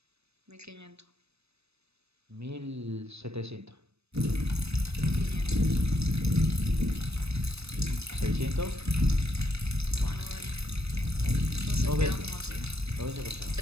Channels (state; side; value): late; left; 0.79 ms